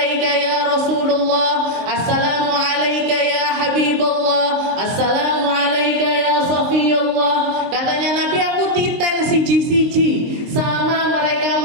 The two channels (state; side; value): late; left; 23 ms